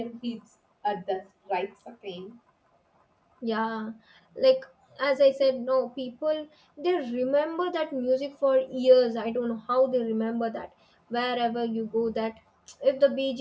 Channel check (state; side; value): identical; both; correlation 1.00